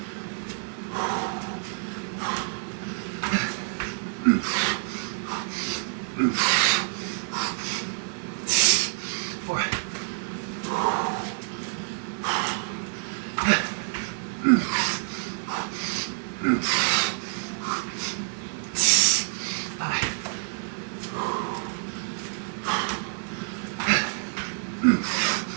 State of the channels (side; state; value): left; silent; digital silence